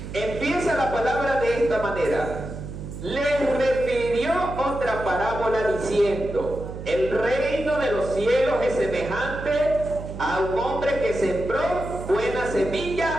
Empieza la palabra de esta manera. Les refirió otra parábola diciendo: el reino de los cielos es semejante a un hombre que sembró buena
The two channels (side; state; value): right; noise; hum, 9 dB below the sound